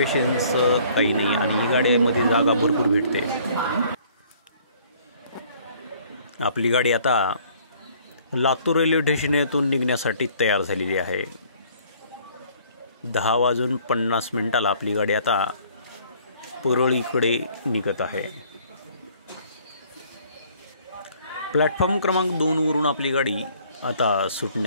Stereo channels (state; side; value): inverted; both; correlation -0.58